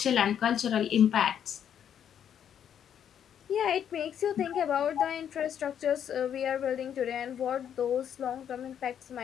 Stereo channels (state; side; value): quieter; right; 9.1 dB